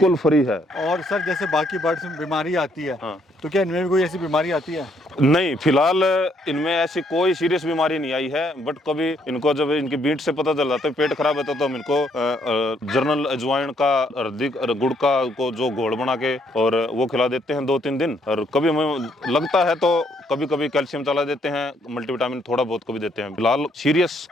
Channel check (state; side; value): normal; both; correlation 0.70